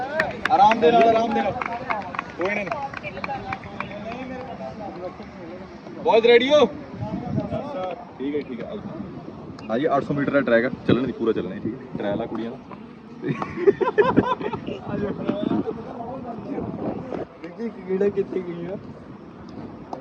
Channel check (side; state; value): both; identical; correlation 1.00